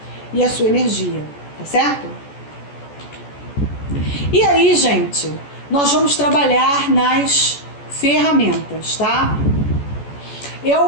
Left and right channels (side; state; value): right; late; 14 ms